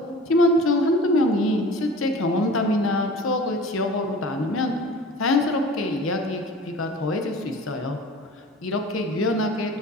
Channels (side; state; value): both; normal; correlation 0.41